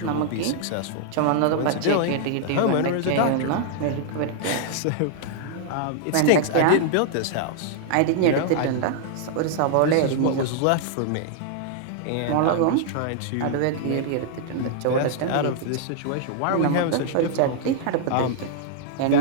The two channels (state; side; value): different; both; correlation -0.01